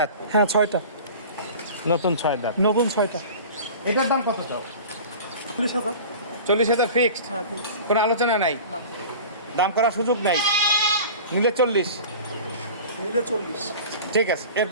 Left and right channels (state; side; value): inverted; both; correlation -0.38